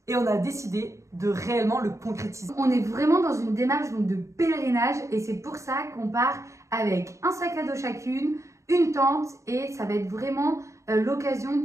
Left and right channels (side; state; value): left; late; 0.15 ms